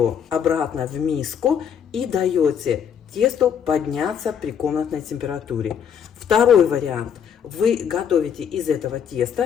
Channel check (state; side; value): quieter; right; 7.9 dB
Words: обратно в миску и даете тесту подняться при комнатной температуре. Второй вариант. Вы готовите из этого